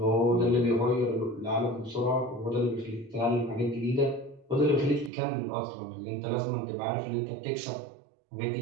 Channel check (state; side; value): drops out; left; at 5.1 s